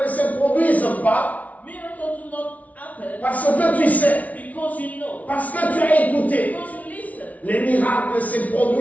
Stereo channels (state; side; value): late; right; 0.070 ms